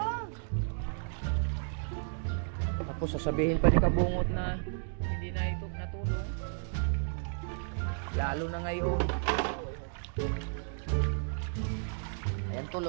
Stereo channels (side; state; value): left; silent; digital silence